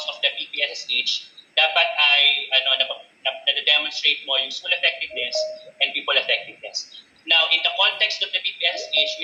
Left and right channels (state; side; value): identical; both; correlation 1.00